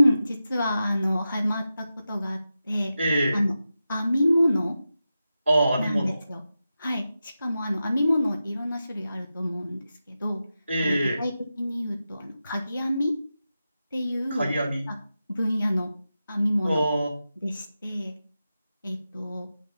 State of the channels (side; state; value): both; inverted; correlation -0.92